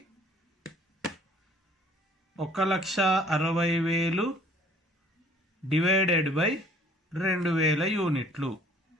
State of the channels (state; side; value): normal; both; correlation 0.55